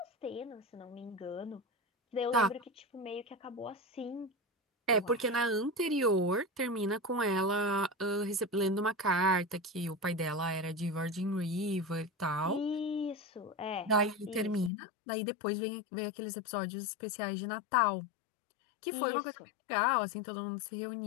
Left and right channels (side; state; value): right; drops out; at 14.7 s